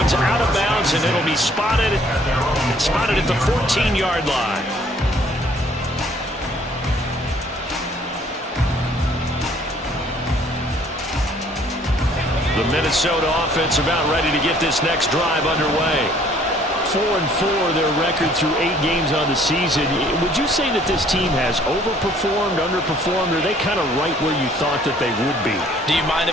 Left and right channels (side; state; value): both; normal; correlation 0.59